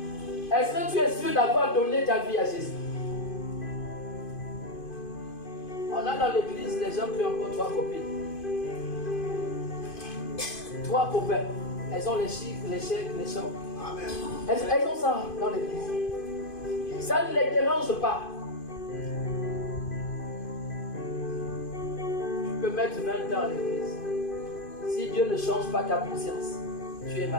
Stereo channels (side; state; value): right; late; 2.5 ms